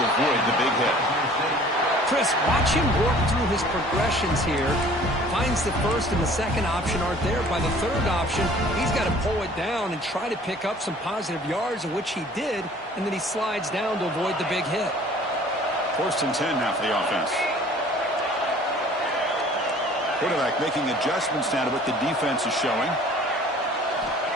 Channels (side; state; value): both; normal; correlation 0.51